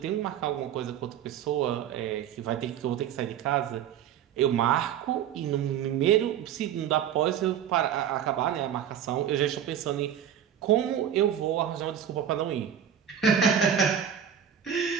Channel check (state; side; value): quieter; left; 9.2 dB